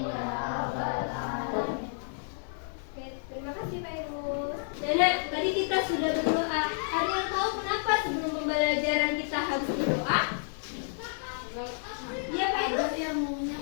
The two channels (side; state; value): right; silent; digital silence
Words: ya rabbal alamin. Oke, terima kasih Fairul. Nenek, tadi kita sudah berdoa. Ada yang tahu kenapa sebelum pembelajaran kita harus berdoa? Iya Fairul, ilmunya